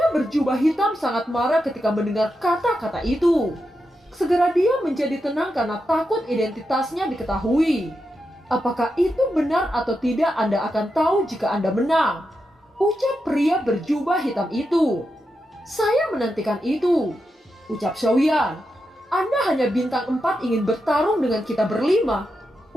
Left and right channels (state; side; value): normal; both; correlation 0.87